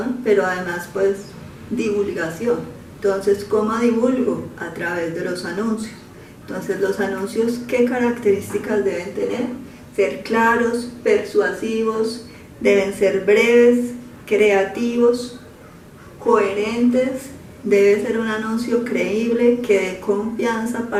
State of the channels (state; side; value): identical; both; correlation 1.00